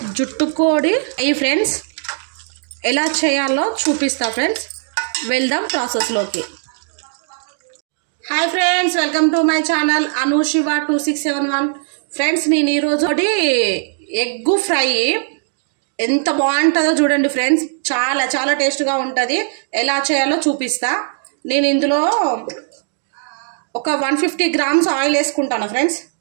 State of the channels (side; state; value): left; silent; 61 dB below the other